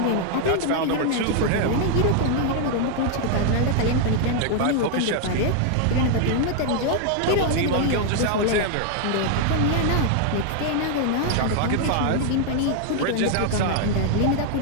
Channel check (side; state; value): both; different; correlation 0.00